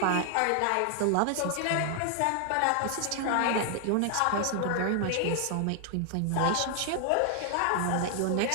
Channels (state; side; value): different; both; correlation 0.00